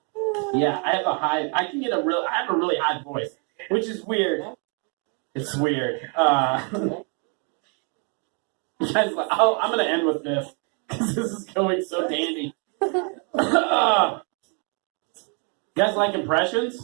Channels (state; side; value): quieter; left; 38.1 dB